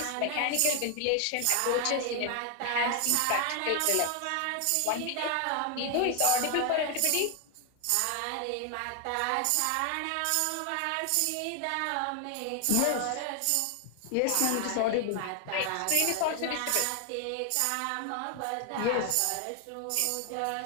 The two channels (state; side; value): different; both; correlation 0.00